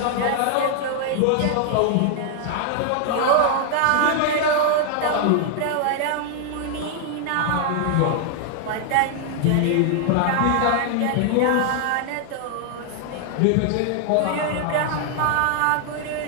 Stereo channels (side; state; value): both; different; correlation 0.00